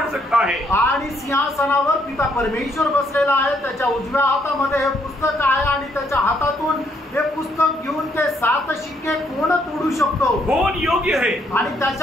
सकता है? आणि सिंहासनावर पिता परमेश्वर बसलेला आहे. त्याच्या उजव्या हातामध्ये हे पुस्तक आहे आणि त्याच्या हातातून हे पुस्तक घेऊन ते 7 शिक्के कोण तोडू शकतो? कौन योग्य है? आणि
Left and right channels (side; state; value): both; normal; correlation 0.71